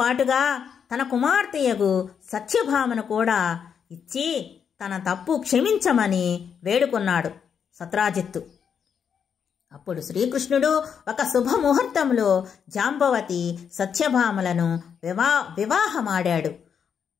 తన కుమార్తెయగు సత్యభామను కూడా ఇచ్చి తన తప్పు క్షమించమని వేడుకున్నాడు సత్రాజిత్తు. అప్పుడు శ్రీకృష్ణుడు ఒక శుభముహూర్తంలో జాంబవతి సత్యభామలను వివాహమాడాడు.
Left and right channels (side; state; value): right; quieter; 7.3 dB